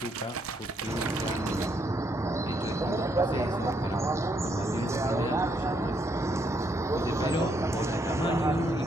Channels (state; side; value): normal; both; correlation 0.74